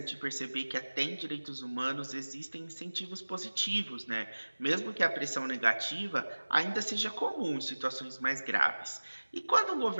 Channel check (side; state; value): both; inverted; correlation -1.00